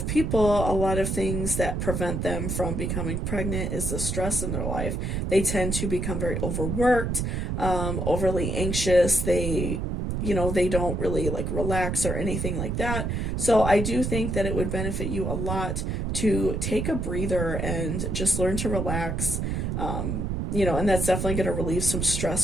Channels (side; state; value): right; noise; rumble, 1 dB below the sound